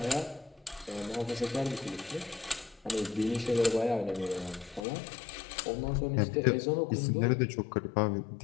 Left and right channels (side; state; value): right; drops out; at 4.9 s